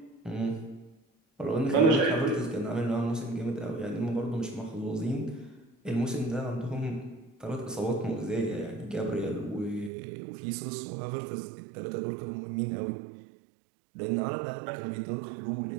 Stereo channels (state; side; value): drops out; left; at 9.9 s